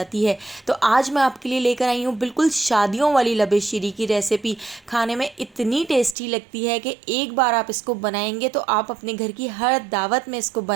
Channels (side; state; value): left; drops out; at 6.2 s